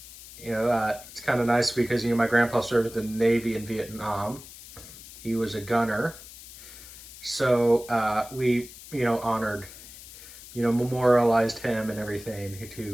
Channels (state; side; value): noise; left; hiss, 16 dB below the sound